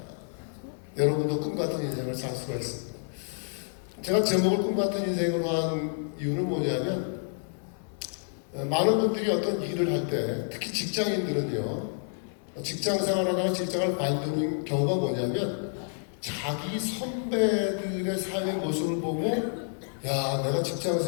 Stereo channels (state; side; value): silent; right; 59 dB below the other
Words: 여러분도 꿈 같은 인생을 살 수가 있습니다. 제가 제목을 꿈 같은 인생으로 한 이유는 뭐냐면 많은 분들이 어떤 일을 할 때 특히 직장인들은요 직장 생활하다가 직장을 관두는 경우가 뭐냐면 자기 선배들의 삶의 모습을 보고 야 내가 직장